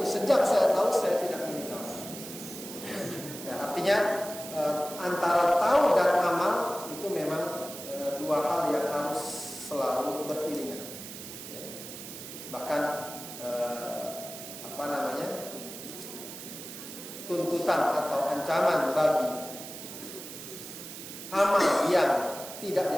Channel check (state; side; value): noise; right; hiss, 11 dB below the sound